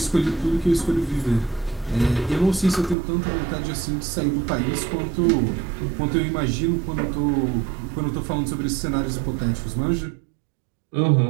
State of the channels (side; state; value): left; drops out; at 3.0 s